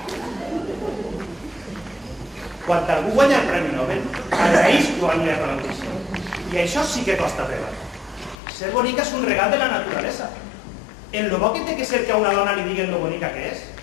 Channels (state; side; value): drops out; right; at 8.3 s